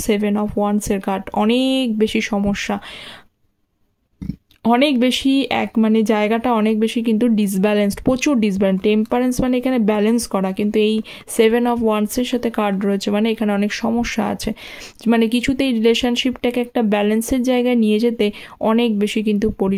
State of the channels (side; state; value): both; identical; correlation 1.00